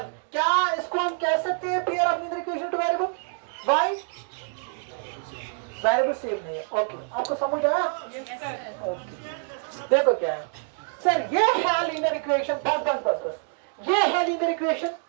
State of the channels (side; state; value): left; silent; 56 dB below the other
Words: क्या इसको हम कह सकते हैं pair of linear equation two variable? Y variable same नहीं है। ओके, आपको समझ आया? ओके, देखो क्या है सर, ये है लीनियर इक्वेशन, बस ये है linear